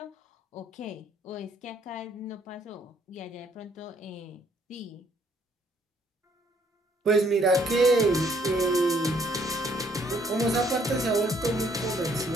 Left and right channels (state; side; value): normal; both; correlation 0.66